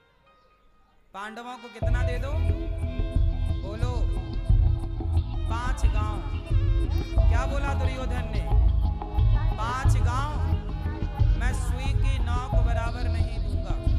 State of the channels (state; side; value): identical; both; correlation 1.00